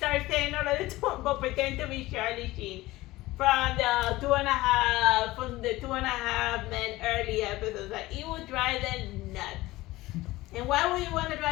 saying all of the but pretend to be Charlie Sheen. From the 2.5 Men early episodes, like it would drive them nuts. And why would you want to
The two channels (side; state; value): right; quieter; 18.5 dB